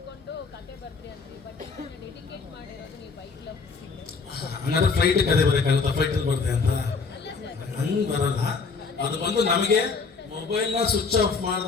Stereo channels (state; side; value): quieter; right; 4.8 dB